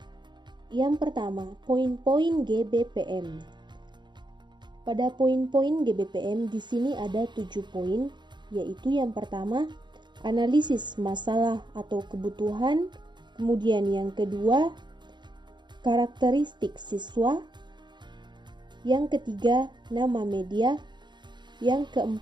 Yang pertama, poin-poin GBPM. Pada poin-poin GBPM di sini ada 7 poin, yaitu yang pertama, analisis masalah atau kebutuhan, kemudian yang kedua, karakteristik siswa, yang ketiga, nama media, yang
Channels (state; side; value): late; left; 0.22 ms